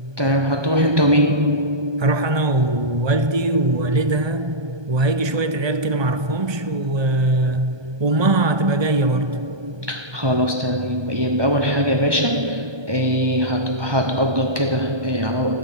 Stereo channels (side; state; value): left; late; 1.2 ms